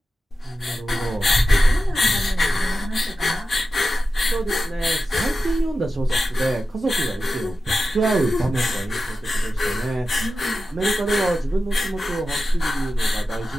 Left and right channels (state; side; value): normal; both; correlation 0.92